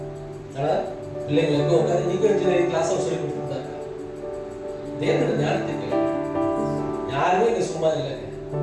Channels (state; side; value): identical; both; correlation 1.00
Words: ஆனா பிள்ளைங்களுக்கு உட்காந்து நீங்க இன்ஜினியரிங் கிளாஸ் சொல்லி கொடுத்துருந்தாங்க. தேவனோட ஞானத்துக்கு யாருமே இங்க சும்மா இல்லைங்க.